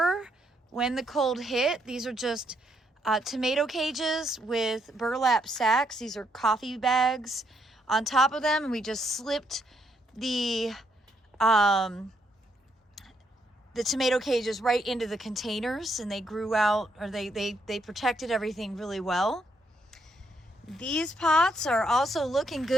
when the cold hit. These are just tomato cages with burlap sacks. These are coffee bags on top of them, and we just slipped the tomato cages right into the containers, and they grew out, or they protected everything really well. These pots are also looking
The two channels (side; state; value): both; normal; correlation 0.75